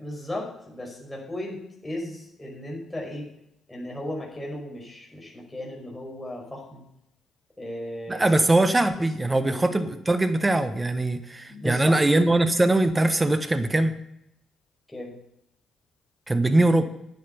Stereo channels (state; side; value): normal; both; correlation 0.95